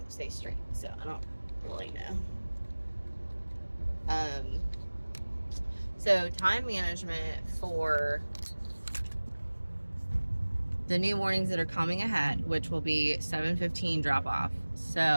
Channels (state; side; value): inverted; both; correlation -1.00